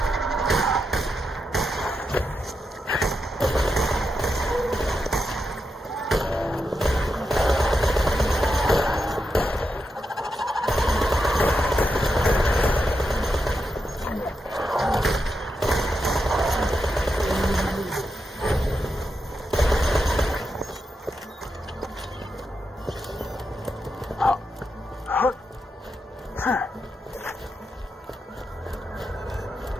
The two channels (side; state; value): both; normal; correlation 0.86